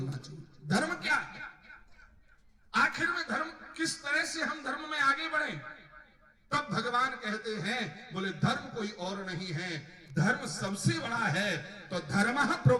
चाहिए। धर्म क्या है? आखिर में धर्म किस तरह से हम धर्म में आगे बढ़े? तब भगवान कहते हैं, बोले धर्म कोई और नहीं है, धर्म सबसे बड़ा है। तो धर्मः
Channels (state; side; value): identical; both; correlation 1.00